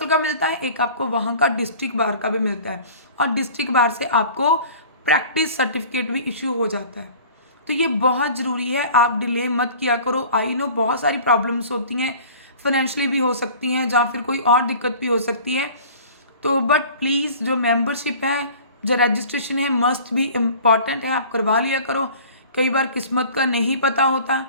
का मिलता है, एक आपको वहाँ का डिस्ट्रिक्ट बार का भी मिलता है, और डिस्ट्रिक्ट बार से आपको प्रैक्टिस सर्टिफिकेट भी इशू हो जाता है। तो ये बहुत ज़रूरी है, आप डिले मत किया करो। आई नो बहुत सारी प्रॉब्लम्स होती हैं, फाइनेंशियली भी हो सकती हैं या फिर कोई और दिक्कत भी हो सकती है, तो बट प्लीज़ जो मेंबरशिप है, जो रजिस्ट्रेशन है, मस्ट भी इम्पॉर्टेंट है, आप करवा लिया करो। कई बार किस्मत का नहीं पता होता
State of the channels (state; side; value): inverted; both; correlation -0.44